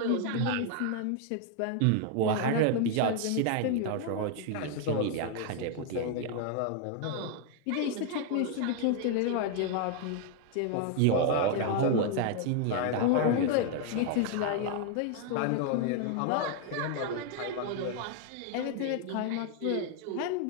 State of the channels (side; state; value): both; different; correlation 0.00